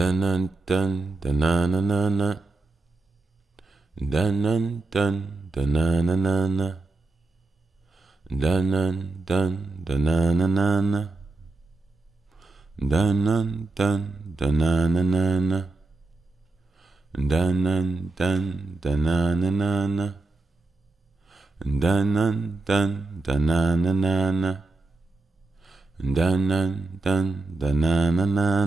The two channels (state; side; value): quieter; left; 3.4 dB